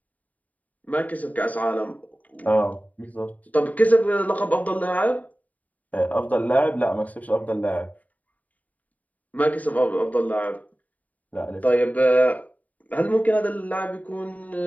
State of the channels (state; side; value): late; right; 0.072 ms